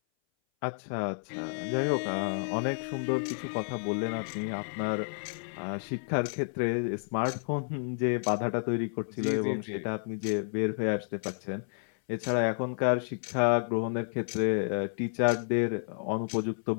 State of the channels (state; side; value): silent; right; 57 dB below the other